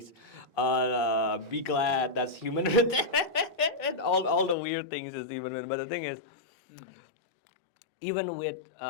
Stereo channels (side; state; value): right; drops out; at 4.5 s